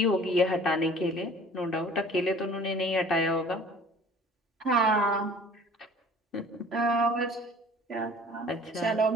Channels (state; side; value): normal; both; correlation 0.48